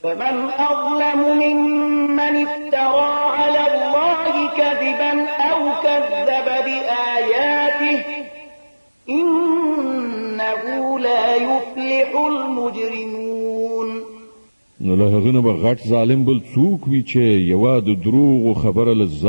فمن أظلم ممن افترى على الله كذبا أو كذب بآياته إنه لا يفلح المجرمون. نو له هغه نه به غټ ظالم بل څوک وي چې یوه د دروغو خبره له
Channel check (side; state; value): both; inverted; correlation -1.00